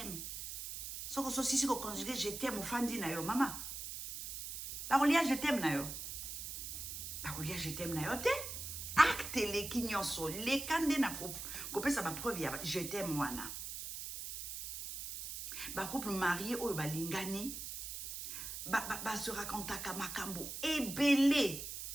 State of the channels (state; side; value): noise; right; hiss, 7 dB below the sound